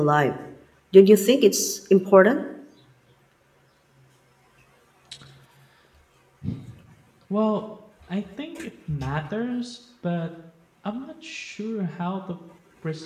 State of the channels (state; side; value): identical; both; correlation 1.00